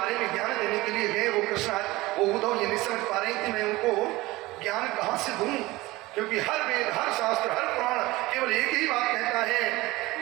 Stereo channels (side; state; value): left; quieter; 19.9 dB